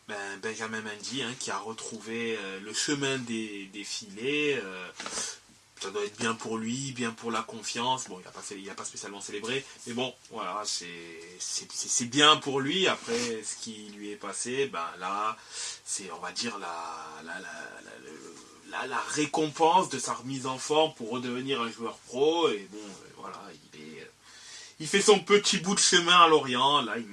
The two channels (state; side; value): identical; both; correlation 1.00